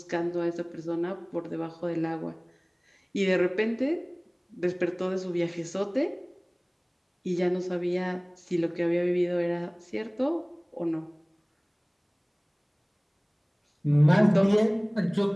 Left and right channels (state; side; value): identical; both; correlation 1.00